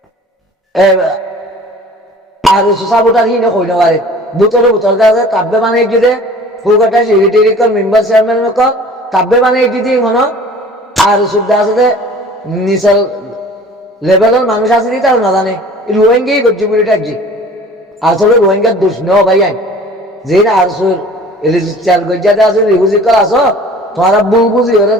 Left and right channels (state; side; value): normal; both; correlation 0.46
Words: আর সাবোটার হিনে হইতে পারে বুতরে বুতর আছে কাব্যে বানিয়েছে যে ফুলকাটা সেক্রেটারি মেম্বার চেয়ারম্যান কাব্যে বানিয়েছে যে মনে আর সুবিধা আছে যে নিচের লেভেলের মানুষ আছে নি তারা না জানে রোহিঙ্গাই করছে বলে এটা যে আসলে রোহিঙ্গার দোষ নেওয়া ভাই যে আর রেজিস্টার গজ্জাতে আছে রিফিউজি করা আছো তোমারা ভুল বুঝি হলে